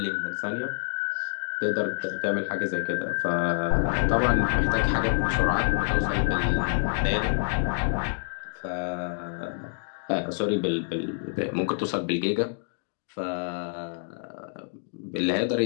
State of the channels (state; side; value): silent; right; 58 dB below the other